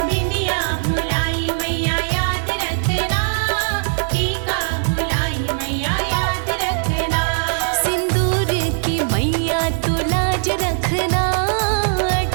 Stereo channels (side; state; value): left; silent; digital silence